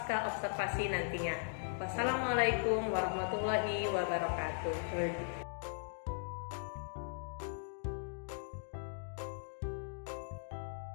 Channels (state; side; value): silent; right; digital silence